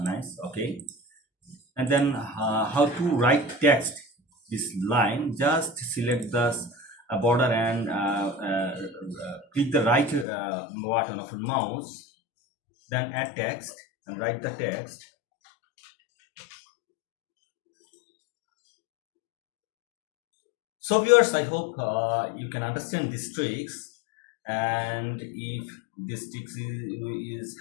nice. Okay, and then how to write text this line, just select the border and click the right button of your mouse, then add text and write the text. So viewers, I hope you can understand these tricks, and if this tricks is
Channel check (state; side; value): drops out; right; at 10.2 s